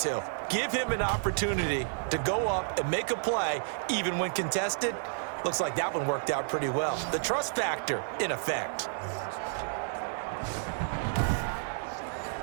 Give him an opportunity to go up and make a play, even when contested. Looks like that one worked out pretty well. The trust factor in effect.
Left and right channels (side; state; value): left; silent; digital silence